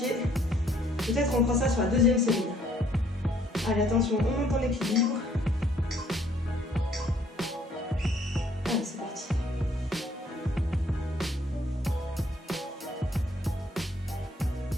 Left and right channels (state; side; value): normal; both; correlation 0.63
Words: Peut-être on fera ça sur la deuxième série. Allez, attention, on monte en équilibre. Allez, c'est parti.